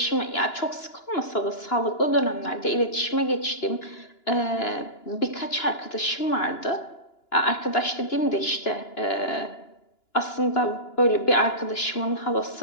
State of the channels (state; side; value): late; right; 2.9 ms